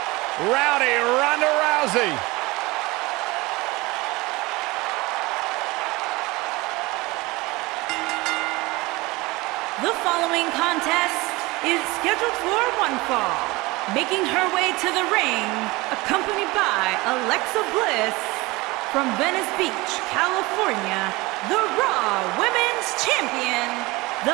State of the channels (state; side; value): quieter; left; 22.4 dB